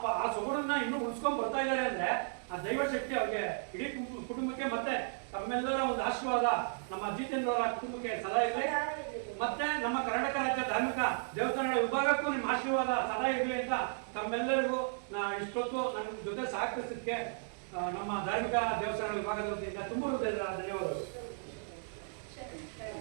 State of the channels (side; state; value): left; silent; digital silence